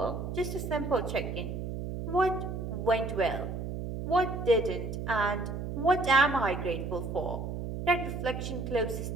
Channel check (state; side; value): noise; right; hum, 5 dB below the sound